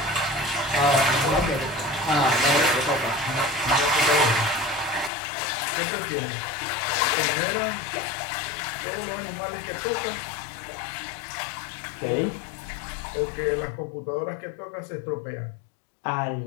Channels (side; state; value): right; drops out; at 5.1 s